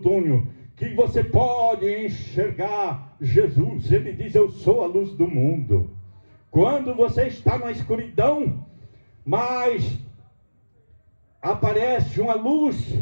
que você pode enxergar Jesus. Ele diz, eu sou a luz do mundo. Quando você está na escuridão, mas aparece uma luz,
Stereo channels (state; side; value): inverted; both; correlation -1.00